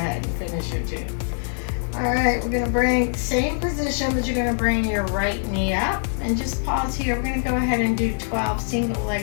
and finish your 2. All right, we're gonna bring same position, but you're gonna bring your right knee up and just pause here. We're gonna go ahead and do 12 single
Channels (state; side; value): silent; right; digital silence